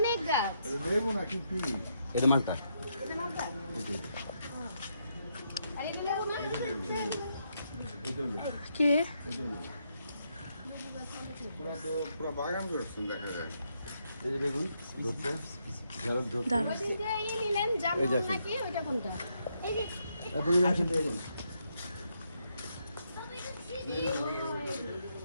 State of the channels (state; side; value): inverted; both; correlation -0.78